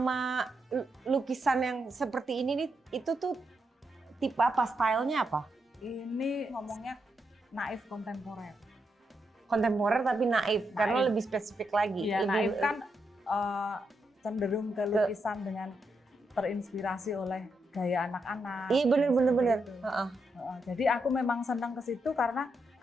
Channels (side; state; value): both; normal; correlation 0.82